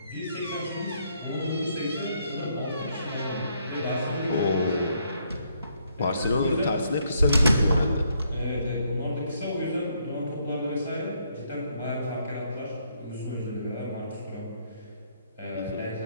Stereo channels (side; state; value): both; inverted; correlation -0.72